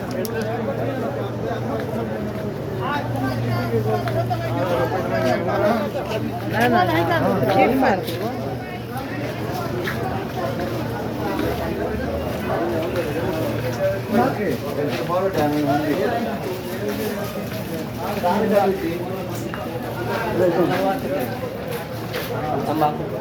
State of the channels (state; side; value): identical; both; correlation 1.00